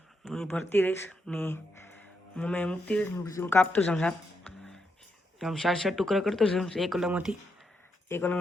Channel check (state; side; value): normal; both; correlation 0.81